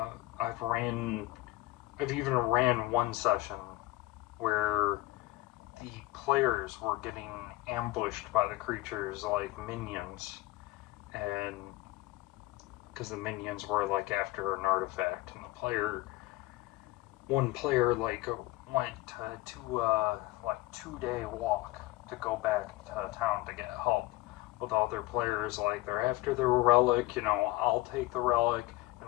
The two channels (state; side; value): quieter; right; 18.5 dB